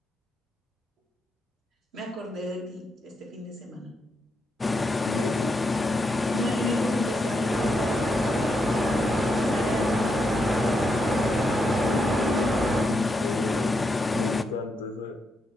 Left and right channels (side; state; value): both; normal; correlation 0.82